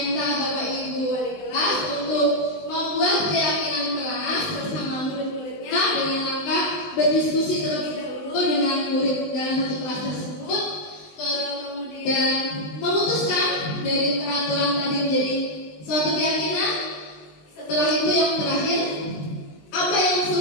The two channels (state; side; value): late; right; 19 ms